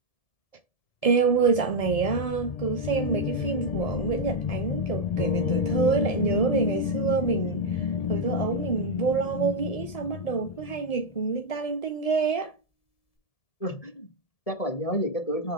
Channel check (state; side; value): late; right; 1.7 ms